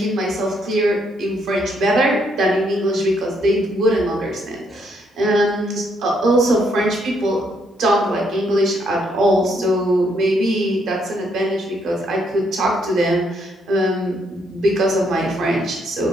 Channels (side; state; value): both; normal; correlation 0.73